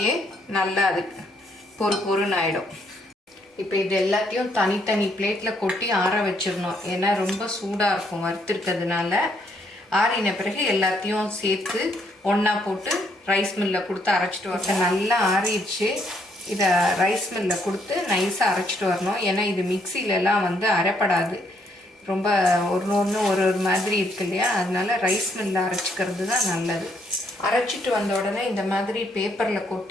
நல்லா அது பொறுன்னு ஆகிடும். இப்போ இது எல்லாத்தையும் தனித்தனி பிளேட்டில் கொட்டி ஆற வச்சிடணும். ஏன்னா ரொம்ப சூடாக இருக்கும் வறுத்துருக்கிறதுனால. ஆறின பிறகு எல்லாத்தையும் சேர்த்து ஒன்றா போட்டு ரைஸ் மில்லில் கொடுத்து அரைச்சிட்டு வரணும். நல்லா ஆறிடுச்சு. இதை ரைஸ் மில்லில் கொடுத்து நைஸாக அரைச்சிட்டு வரணும். ஏன்னா இது மிக்சிலெலாம் வந்து அரைப்படாது. ரொம்ப ஒன்று ஒரு மாதிரி இருக்கு இல்லையா, அதனால ரைஸ் மில்லில் அரைச்சிக்கிறது தான் நல்லது. அரைச்சிட்டு வந்த உடனே இந்த மாதிரி பேப்பரில்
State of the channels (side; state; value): both; normal; correlation 0.72